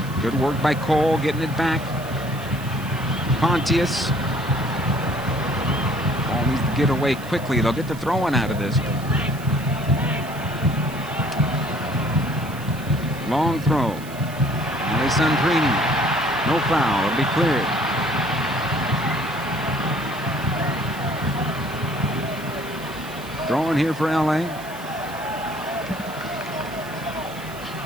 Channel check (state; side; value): noise; right; hiss, 18 dB below the sound